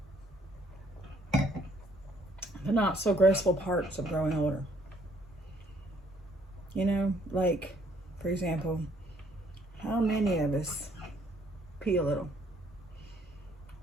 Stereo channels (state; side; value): normal; both; correlation 0.64